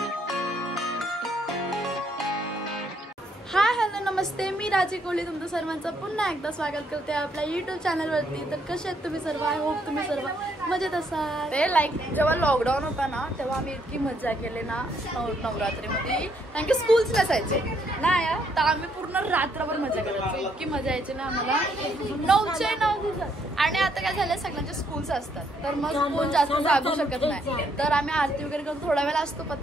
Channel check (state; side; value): normal; both; correlation 0.71